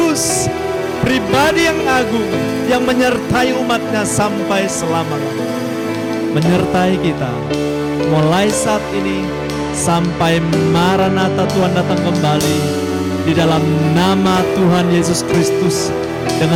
pribadi yang agung yang menyertai umatnya sampai selama-lamanya. Menyertai kita mulai saat ini sampai Maranatha Tuhan datang kembali. Di dalam nama Tuhan Yesus Kristus,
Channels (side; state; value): both; identical; correlation 1.00